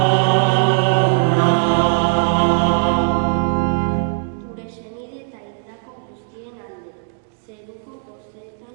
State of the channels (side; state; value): left; silent; digital silence